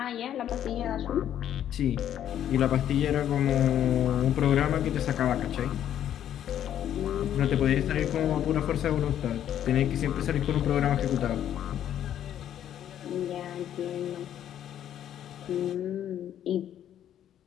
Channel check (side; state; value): right; quieter; 10.6 dB